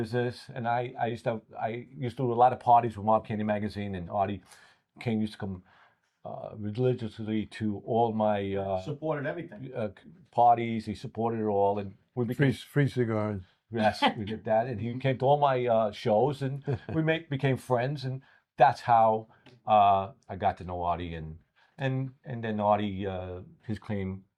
and I used to do a lot of parties with Mob Candy magazine, and Artie used to come religiously to all my supported everything parties. He supported it all, and we became free cigars. Yes, we did that, and he came to all my shows, and we became friends, and that's how I got to know Artie, and then Artie, his claim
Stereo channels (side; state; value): both; identical; correlation 1.00